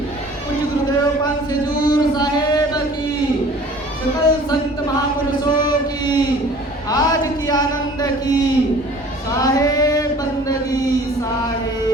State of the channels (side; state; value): both; normal; correlation 0.48